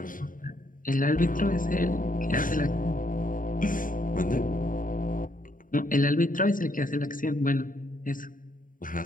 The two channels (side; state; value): right; late; 0.39 ms